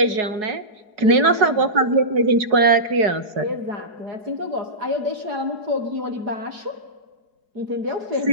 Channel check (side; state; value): left; late; 4.7 ms